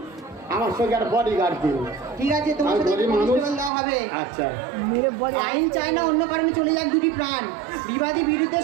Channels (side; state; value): left; drops out; at 3.7 s